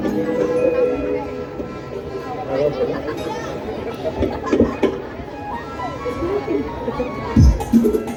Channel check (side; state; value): both; identical; correlation 1.00